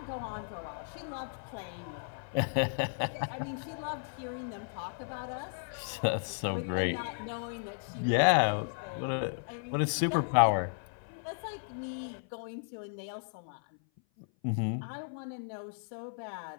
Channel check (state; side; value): silent; right; 55 dB below the other